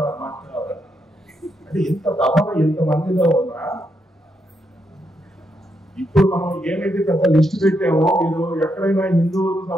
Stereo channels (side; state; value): both; normal; correlation 0.80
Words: అంటే ఇంత దఫన ఇంతమందిలో ఉన్నా ఇప్పుడు మనం ఏమైతే పెద్ద లిస్ట్ పెట్టామో, మీరు ఎక్కడైనా హిందువులకు